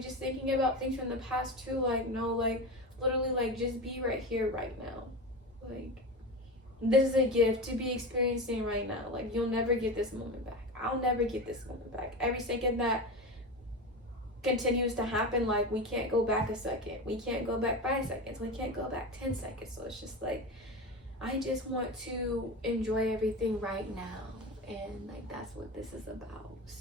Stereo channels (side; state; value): both; normal; correlation 0.24